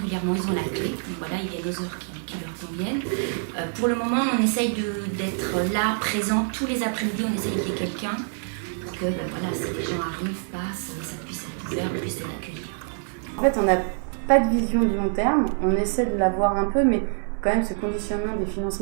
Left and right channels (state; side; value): silent; left; 61 dB below the other